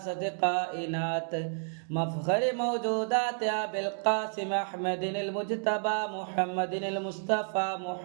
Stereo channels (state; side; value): silent; left; 57 dB below the other